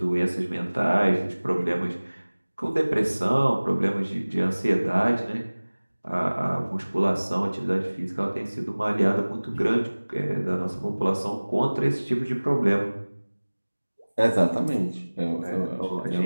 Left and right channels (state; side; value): inverted; both; correlation -1.00